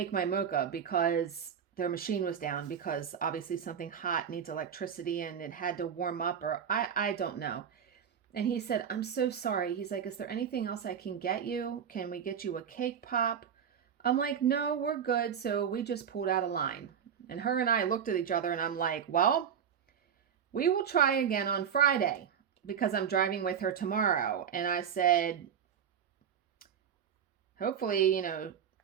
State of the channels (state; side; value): quieter; left; 8.0 dB